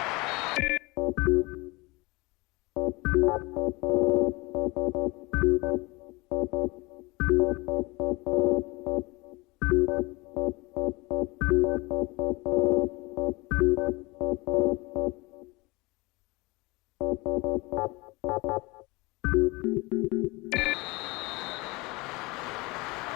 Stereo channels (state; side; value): quieter; right; 24.3 dB